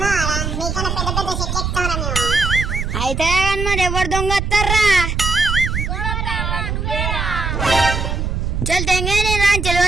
అయితే కానీ మరి ఎవరు దొంగ వస్తారా? చల్ తెంగే నేను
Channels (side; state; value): right; noise; rumble, 2 dB below the sound